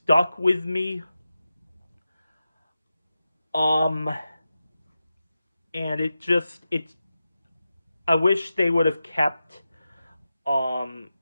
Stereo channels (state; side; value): inverted; both; correlation -0.92